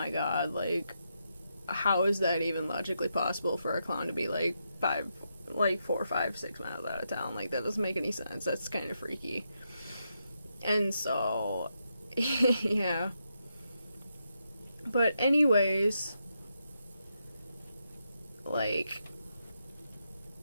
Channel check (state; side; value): inverted; both; correlation -0.83